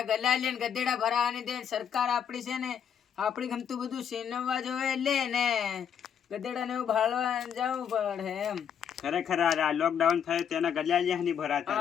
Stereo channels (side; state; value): right; quieter; 8.2 dB